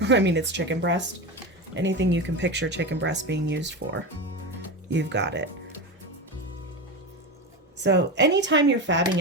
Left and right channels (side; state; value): both; normal; correlation 0.21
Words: I mean, it's chicken breast. Anything you can picture chicken breast being used for, you've got it. So anytime you're fabbing